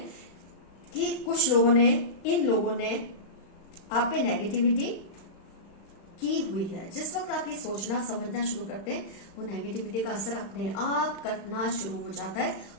कि कुछ लोगों ने, इन लोगों ने आप पे नेगेटिविटी की हुई है, जिस वक्त आप ये सोचना समझना शुरू करते हैं, वो नेगेटिविटी का असर अपने आप कटना शुरू हो जाता है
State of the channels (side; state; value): right; late; 35 ms